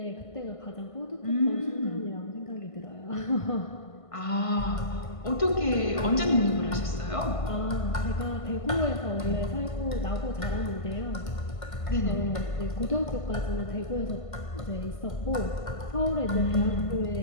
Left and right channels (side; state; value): right; late; 1.5 ms